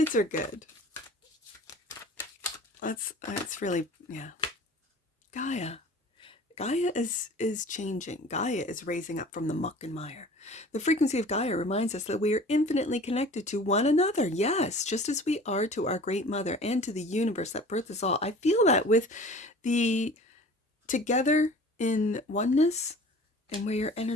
are good. That's really, yeah. Gaia is changing. Gaia is raising up from the muck and mire. The frequency of Gaia reminds us that we are infinitely connected to one another. Yes, just as we are to our great mother and to the universe that birthed us all. I feel that with the together in oneness, and where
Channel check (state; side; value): normal; both; correlation 0.44